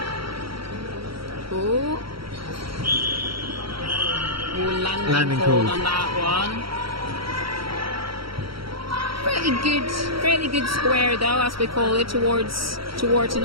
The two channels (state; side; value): late; left; 0.75 ms